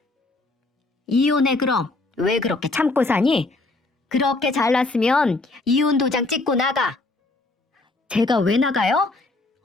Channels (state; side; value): quieter; right; 3.2 dB